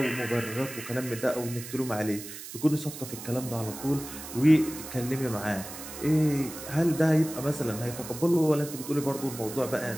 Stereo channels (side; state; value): right; noise; hiss, 11 dB below the sound